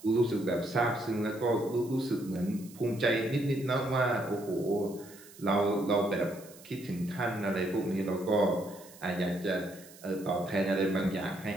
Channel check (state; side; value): noise; right; hiss, 21 dB below the sound